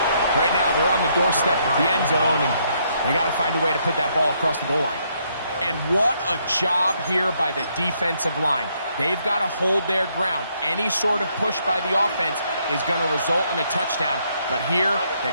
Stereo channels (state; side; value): inverted; both; correlation -0.72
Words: right now they're on the doorstep of the end zone, and they got to find a way to put that ball across the goal line. And what a job here by the defensive line. They've got to hold their ground. Any sort of push by the offense is going to result in a touchdown. But here, the